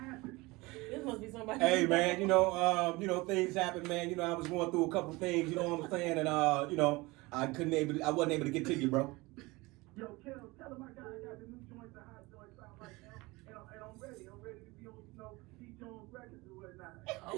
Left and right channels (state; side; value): quieter; left; 22.8 dB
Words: This must be somebody. Hey man, you know things happen, man. You know I was going through a couple things. You know what I'm saying, and you know I wasn't able to get to you, bro. Yo, tell him I got the new joints, the hot joints out right now, and I'm ready. I'm ready to be on, you know, C. Jones records or